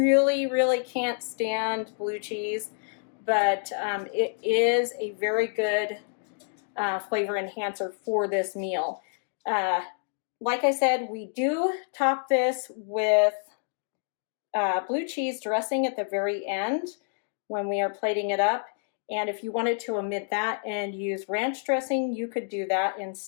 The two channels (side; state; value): right; silent; digital silence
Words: really can't stand blue cheese, but it is a very good flavor enhancer for this meal. Like I said, we do top this with blue cheese dressing at the very end when we are plating it up. And if you wanted to omit that and use ranch dressing, you could do that